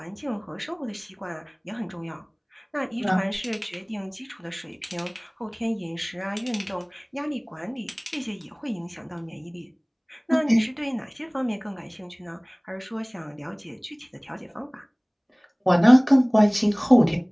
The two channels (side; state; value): both; identical; correlation 1.00